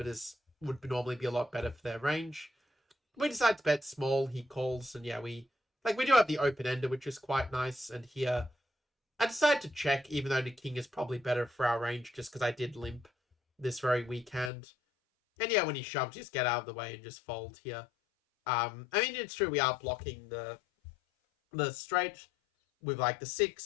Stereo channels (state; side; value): drops out; right; at 14.5 s